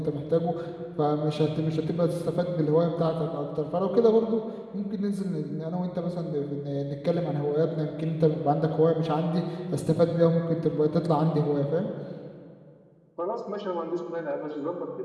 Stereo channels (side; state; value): both; identical; correlation 1.00